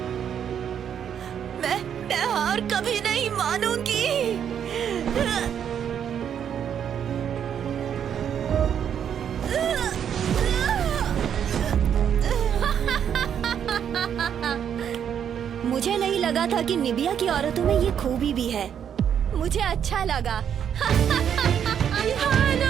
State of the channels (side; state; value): left; quieter; 8.6 dB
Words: मैं हार कभी नहीं मानूंगी। मुझे नहीं लगा था कि निबिया की औरतों में ये खूबी भी है। मुझे अच्छा लगा।